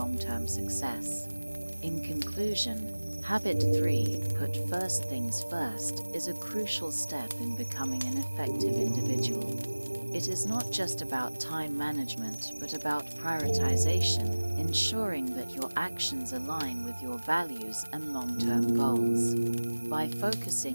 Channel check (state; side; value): inverted; both; correlation -1.00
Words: success. In conclusion, Habit 3, put first things first, is a crucial step in becoming an effective individual. It is not just about time management, but about prioritization, ensuring that your actions align with your values and long-term goals. By